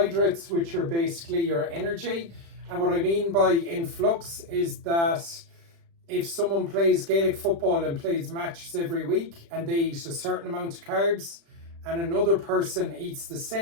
which are basically your energy. And what I mean by in flux is that if someone plays Gaelic football and plays matches every week and they eat a certain amount of carbs, and another person eats the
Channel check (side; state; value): left; late; 36 ms